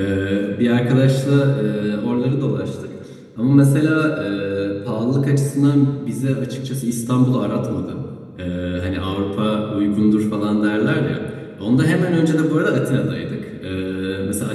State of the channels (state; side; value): identical; both; correlation 1.00